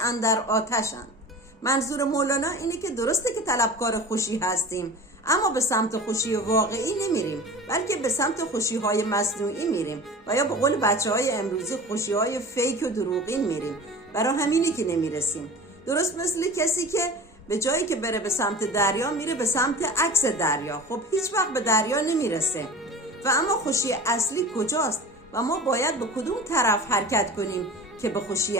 اندر آتشند. منظور مولانا اینه که درسته که طلبکار خوشی هستیم، اما به سمت خوشی واقعی نمیریم، بلکه به سمت خوشی‌های مصنوعی میریم و یا به قول بچه‌های امروزی خوشی‌های فیک و دروغین میریم. برای همینی که نمیرسیم. درست مثل کسی که به جایی که بره به سمت دریا میره به سمت عکس دریا، خب هیچ وقت به دریا نمیرسه. و اما خوشی اصلی کجاست و ما باید به کدوم طرف حرکت کنیم که به خوشی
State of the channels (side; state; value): both; normal; correlation 0.37